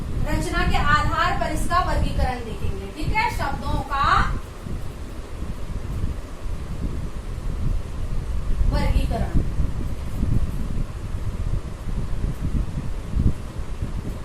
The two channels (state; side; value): identical; both; correlation 1.00